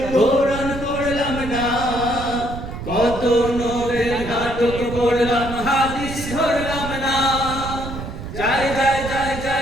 কোরআন পড়লাম না, কত নোবেল নাটক পড়লাম হাদিস ধরলাম না। যায় যায় যায়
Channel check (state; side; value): noise; right; rumble, 8 dB below the sound